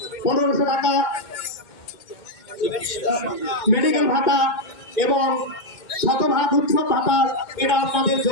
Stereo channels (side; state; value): right; late; 2.1 ms